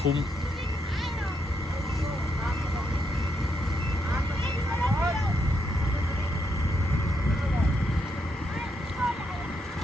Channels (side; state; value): both; normal; correlation 0.79